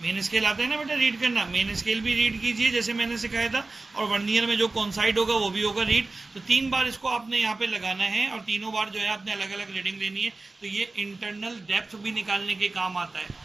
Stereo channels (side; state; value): left; quieter; 3.3 dB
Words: मेन स्केल आता है ना बेटा रीड करना, मेन स्केल भी रीड कीजिए जैसे मैंने सिखाया था, और वर्नियर में जो कॉन्साइड होगा वो भी होगा रीड। तो 3 बार इसको आपने यहाँ पे लगाना है और तीनों बार जो है आपने अलग अलग रीडिंग लेनी है। तो ये इंटरनल डेप्थ भी निकालने के काम आता है,